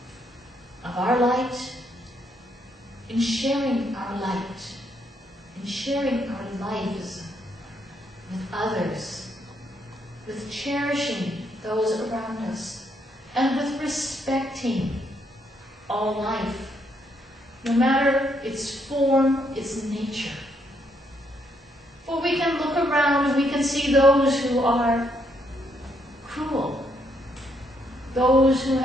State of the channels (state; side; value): normal; both; correlation 0.74